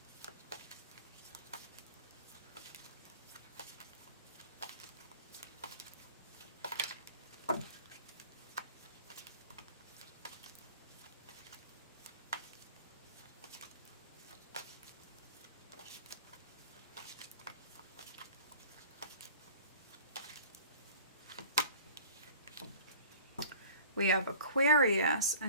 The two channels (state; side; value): inverted; both; correlation -0.44